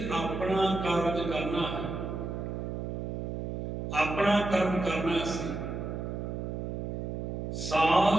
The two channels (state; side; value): noise; right; hum, 4 dB below the sound